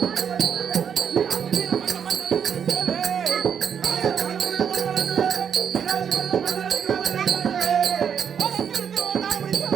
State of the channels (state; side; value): quieter; left; 7.8 dB